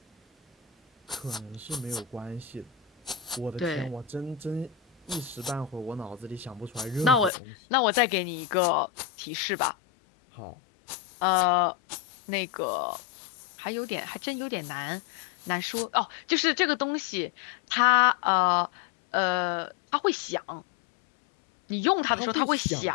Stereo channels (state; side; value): drops out; right; at 7.3 s